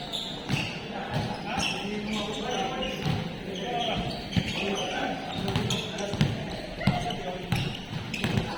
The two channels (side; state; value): both; identical; correlation 1.00